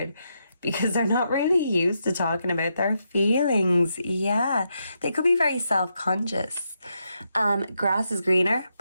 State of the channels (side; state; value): both; inverted; correlation -0.82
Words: because they're not really used to talking about their feelings. Yeah, they could be very self-conscious. Grass is greener,